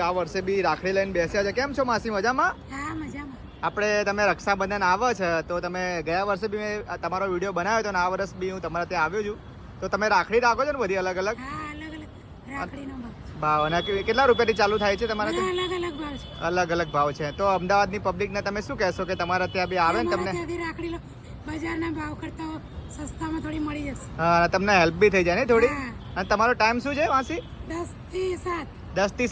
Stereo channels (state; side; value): identical; both; correlation 1.00